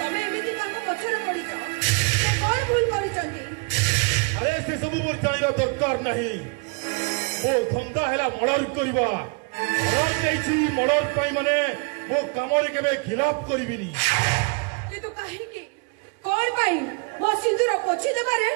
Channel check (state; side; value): quieter; left; 32.6 dB